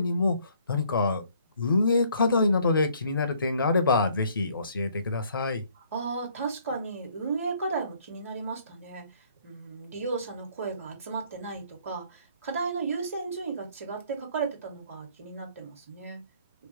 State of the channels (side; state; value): both; inverted; correlation -0.62